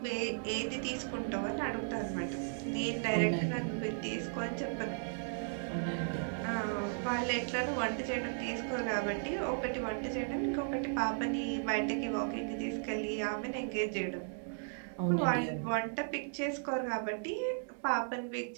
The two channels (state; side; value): silent; left; digital silence